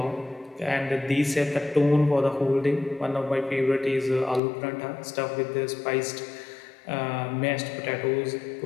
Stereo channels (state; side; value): drops out; right; at 4.4 s